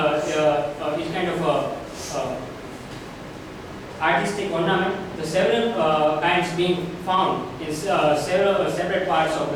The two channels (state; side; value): identical; both; correlation 1.00